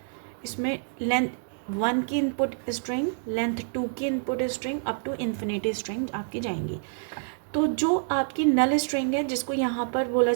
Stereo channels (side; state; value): left; silent; digital silence